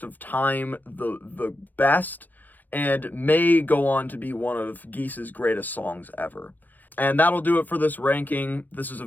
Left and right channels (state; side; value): late; right; 0.088 ms